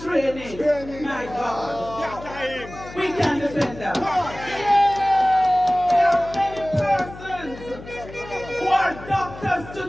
my God, we can defend that. There are many persons who are doctors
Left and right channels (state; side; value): noise; left; hum, 15 dB below the sound